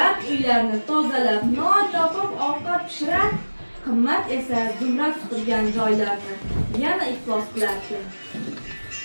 uylarni tozalab, non topib, ovqat pishirar. Qimmat esa Zumrad supurgan joylarni yana iflos qilardi.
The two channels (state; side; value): inverted; both; correlation -1.00